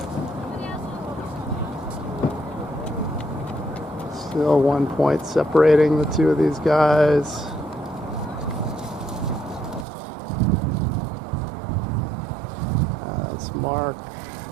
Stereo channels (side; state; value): left; drops out; at 9.9 s